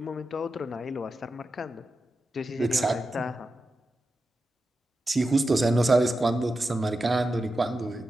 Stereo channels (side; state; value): both; normal; correlation 0.90